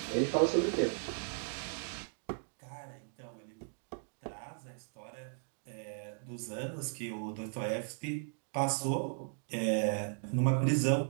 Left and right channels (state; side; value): silent; left; digital silence